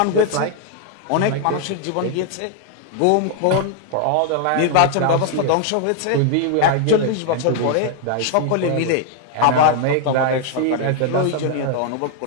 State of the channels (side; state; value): both; different; correlation 0.00